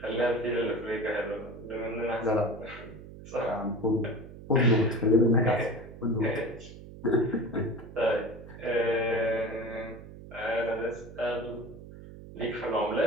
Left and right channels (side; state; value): right; noise; hum, 15 dB below the sound